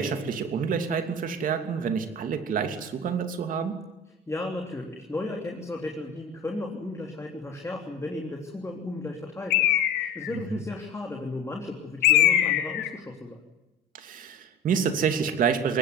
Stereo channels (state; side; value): normal; both; correlation 0.33